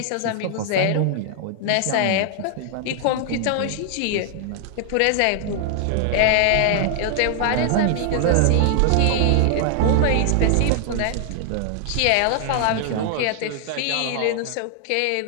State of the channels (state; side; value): different; both; correlation 0.00